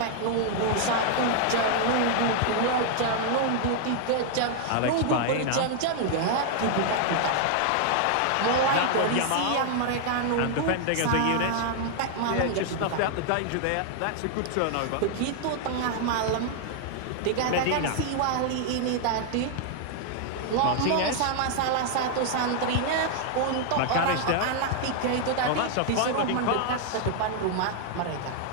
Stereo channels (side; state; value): both; different; correlation 0.00